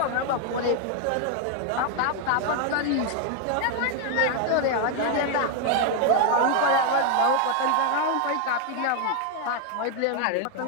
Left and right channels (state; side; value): different; both; correlation 0.00